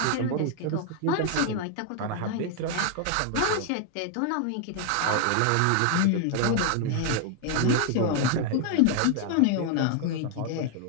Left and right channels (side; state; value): both; different; correlation 0.00